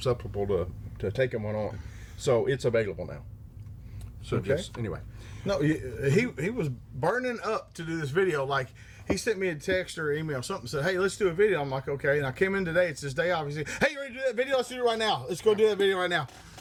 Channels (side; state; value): both; identical; correlation 1.00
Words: to taking one on. So it's available now. So anyway. No, he was burning up to do this video. Like, he sent me a text or email, something, said, hey, let's do a video. I'm like, okay. And I came in today. It's his day off. He said, hey, you ready to do that video? Let's do it right now. Let's go do that video right now.